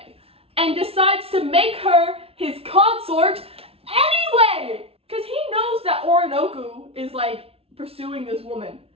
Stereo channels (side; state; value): left; late; 0.28 ms